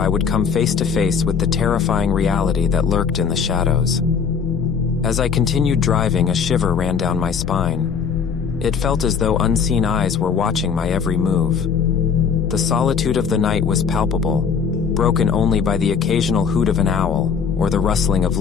would come face to face with the terrifying reality that lurked in the shadows. As I continued driving, a shiver ran down my spine. It felt as though unseen eyes were watching my every move. The solitude of the night was palpable, broken only by the occasional hoot of an owl or the rustling of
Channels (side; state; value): right; quieter; 6.3 dB